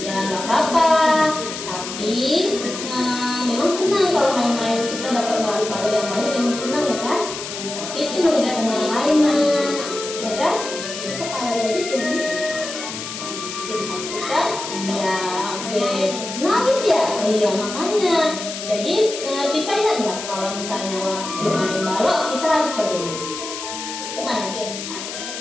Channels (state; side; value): noise; left; hiss, 8 dB below the sound